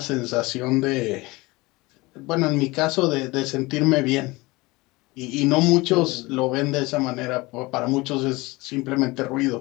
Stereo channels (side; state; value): right; quieter; 22.5 dB